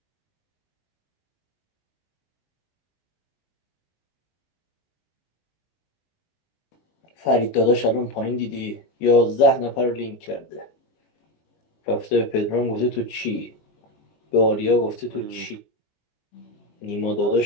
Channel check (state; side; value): late; right; 20 ms